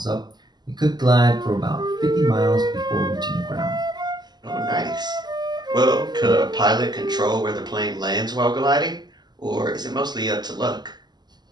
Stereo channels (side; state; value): left; late; 0.20 ms